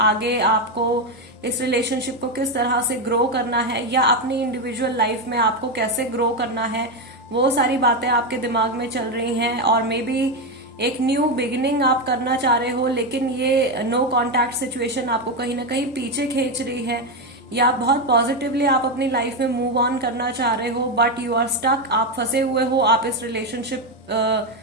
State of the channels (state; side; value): normal; both; correlation 0.09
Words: आपको इस रिलेशनशिप को किस तरह से ग्रो करना है, या अपनी इंडिविजुअल लाइफ में आपको कैसे ग्रो करना है, वो सारी बातें आपके दिमाग में चल रही हैं। और मे बी एक न्यू बिगिनिंग आप करना चाह रहे हो, लेकिन ये नो कॉन्टैक्ट सिचुएशन आपको कहीं ना कहीं पीछे खींच रही है, या बहुत पॉजिटिवली आप अपनी लाइफ में मूव ऑन करना चाह रहे हो, बट यू आर स्टक, आप फंसे हुए हो, आप इस रिलेशनशिप